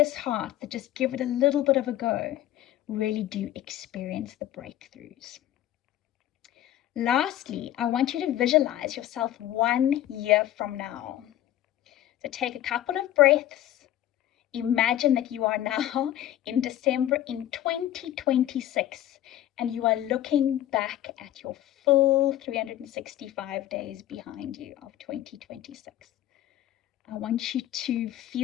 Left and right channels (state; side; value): quieter; right; 13.0 dB